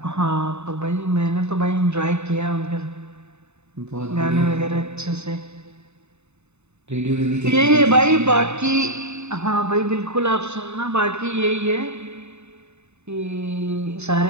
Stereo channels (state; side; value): late; left; 0.82 ms